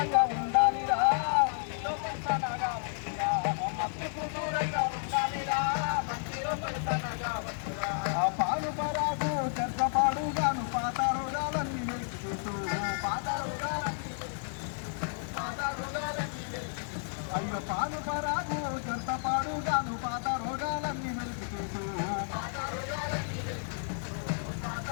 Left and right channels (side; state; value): right; silent; digital silence